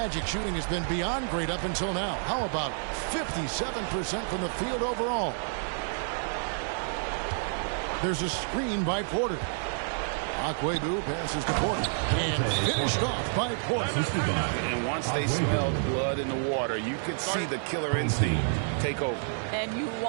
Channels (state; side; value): silent; left; digital silence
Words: shooting has been beyond great up until now. How about 57% from the field overall? There's a screen by Porter. Aguebu passes to Porter. And finished off by Porter. And once they smelled blood in the water, you could see the killer instinct take over. And you